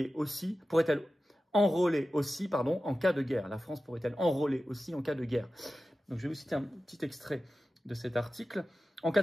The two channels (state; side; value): normal; both; correlation 0.94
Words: aussi, en cas de guerre. La France pourrait-elle enrôler aussi en cas de guerre. Donc, je vais vous citer un petit extrait de cet article. En cas